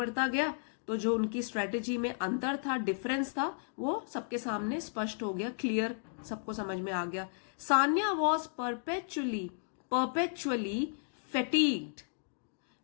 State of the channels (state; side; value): silent; right; digital silence